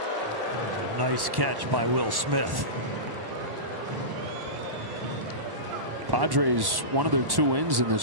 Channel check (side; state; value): left; late; 1.1 ms